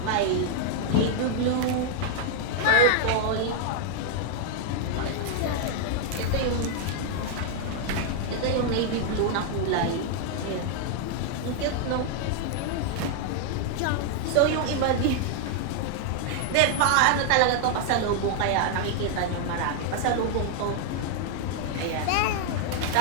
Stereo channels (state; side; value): different; both; correlation 0.00